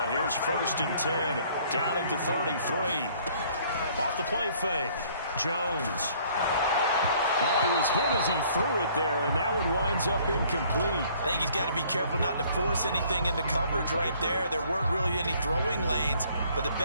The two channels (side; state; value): both; inverted; correlation -0.59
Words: Here's 1st and 10. Down at the 33. Off the play fake. Jones. Oh, he was hit as he threw it there, and that one winds up incomplete. I think he's got to be careful not to force anything into coverage right there. There weren't really any throwing lanes, but the